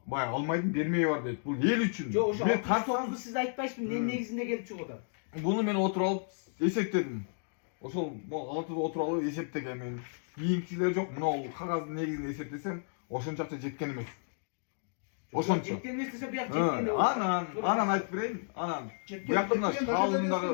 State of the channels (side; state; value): right; silent; digital silence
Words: Bay almaydım bermeye var deyip. Bu el üçün. Jo oşo Men 609'du siz aytpaysiz ne negizinde gelip çıkıda. bunu men oturup alıp esepledim. Oşol altıda oturup alıp eseptegen men. Kийинкилер жок. Мына кагаздын негизинде эсептесем, ошончакча жеткен эмес. Ошончо. Жеткен эмес десе буяк жеткен. Анан айтып берейин. Анан буякта мына